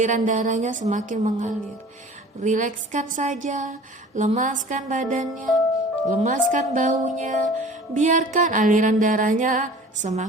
darahnya semakin mengalir. Rilekskan saja, lemaskan badannya, lemaskan bahunya, biarkan aliran darahnya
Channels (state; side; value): normal; both; correlation 0.44